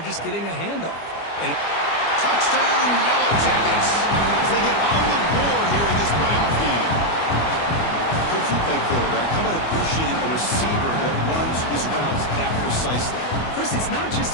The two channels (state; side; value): late; right; 25 ms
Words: just getting a handoff. And touchdown, Yellow Jackets, as they get on the board here in this playoff game. Coach, you play quarterback. How about appreciating a receiver that runs his routes that precisely? Chris, it's not just